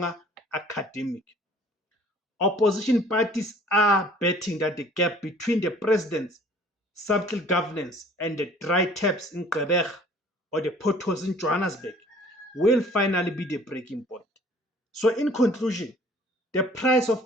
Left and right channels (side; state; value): both; normal; correlation 0.53